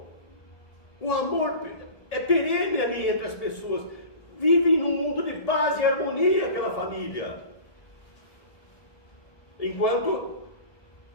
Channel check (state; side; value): late; right; 1.7 ms